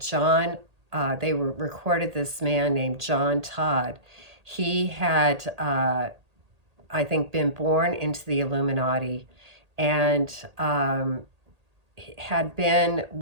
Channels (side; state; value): left; late; 1.8 ms